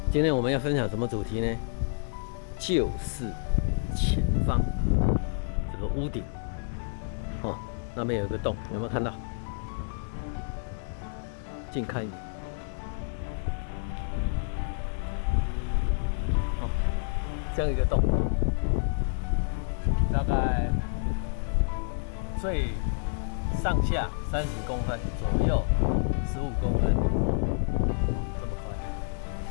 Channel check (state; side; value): silent; right; digital silence